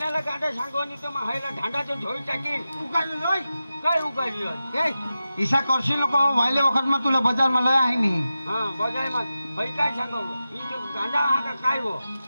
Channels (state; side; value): inverted; both; correlation -0.92